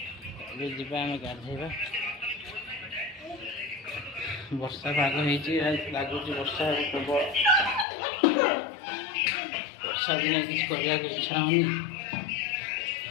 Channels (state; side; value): drops out; right; at 7.9 s